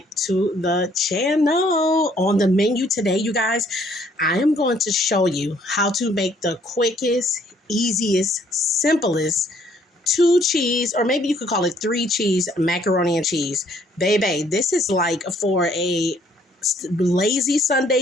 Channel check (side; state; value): both; normal; correlation 0.64